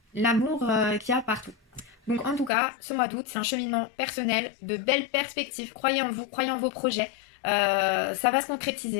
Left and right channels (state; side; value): drops out; right; at 2.5 s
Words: l'amour qu'il y a partout. Donc en tout cas, ce mois d'août, c'est un cheminement personnel, de belles perspectives. Croyez en vous, croyez en vos projets. Ça va se